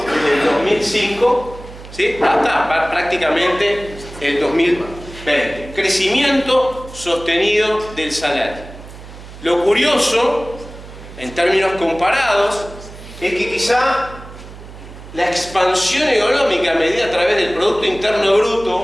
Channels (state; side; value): noise; right; hum, 16 dB below the sound